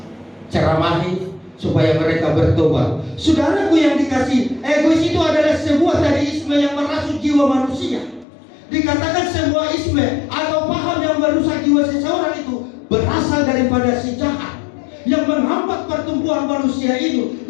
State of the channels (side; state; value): right; drops out; at 8.2 s